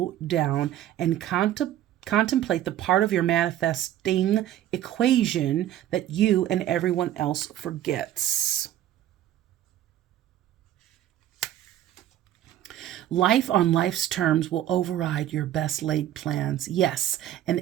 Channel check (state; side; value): quieter; left; 12.2 dB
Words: down and Contemplate the part of your manifesting equation that you and everyone else forgets. Life on life's terms will override your best laid plans. Yes,